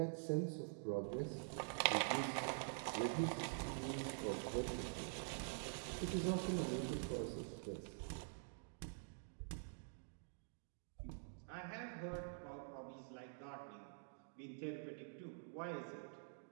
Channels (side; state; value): left; silent; digital silence